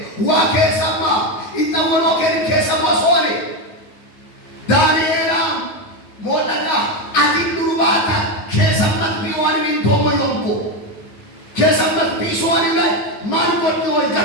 ዋ ከሰማ ይጣወሎ ከሰማ ሶኔ ዳንኤላ ሞለካ አቲንዱባታ ከሰማት ቢዋን እንቶሞ ይንቆ ከሰማት ቢሶኒ ላይ ማን ወጥቶ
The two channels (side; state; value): right; late; 9.5 ms